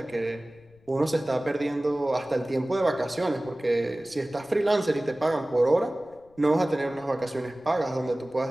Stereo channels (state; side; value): noise; left; rumble, 30 dB below the sound